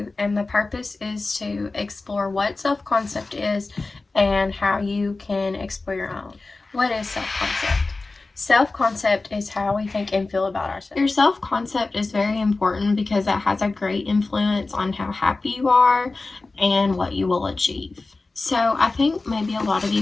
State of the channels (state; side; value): quieter; right; 3.5 dB